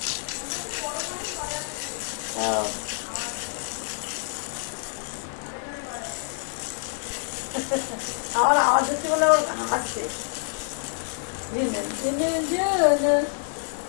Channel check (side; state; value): right; silent; 59 dB below the other